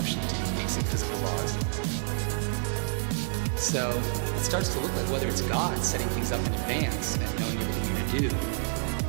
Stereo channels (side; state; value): left; silent; 59 dB below the other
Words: to these basic physical laws. So it starts to look like whether it's God setting things up in advance and knowing everything you're going to do,